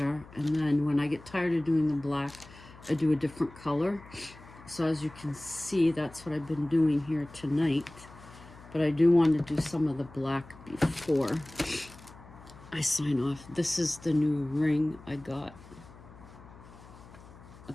and then when I get tired of doing the black, I do a different color. So as you can see, that's what I've been doing here tonight. But I do want to do some of the black before I sign off. This is the new ring I got. A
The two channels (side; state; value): left; noise; hum, 20 dB below the sound